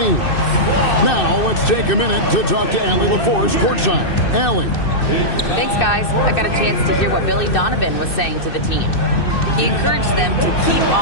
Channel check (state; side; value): late; right; 2.6 ms